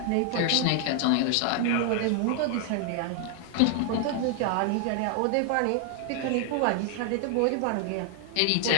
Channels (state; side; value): different; both; correlation 0.00